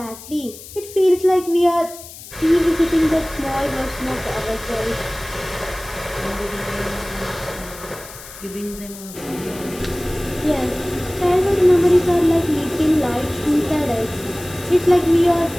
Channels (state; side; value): noise; left; hiss, 16 dB below the sound